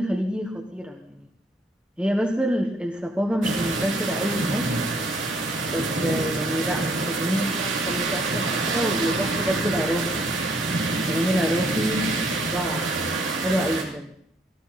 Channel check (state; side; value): normal; both; correlation 0.66